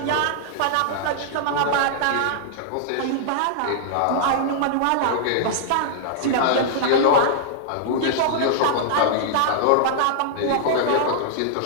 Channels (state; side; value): different; both; correlation -0.01